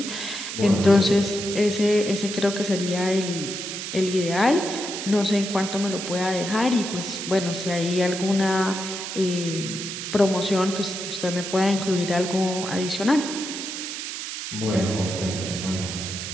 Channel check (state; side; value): noise; right; hiss, 6 dB below the sound